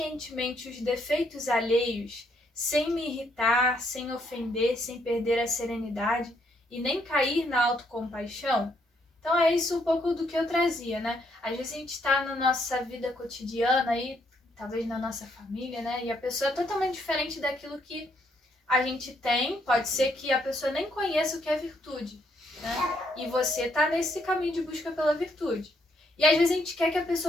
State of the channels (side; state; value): both; normal; correlation 0.72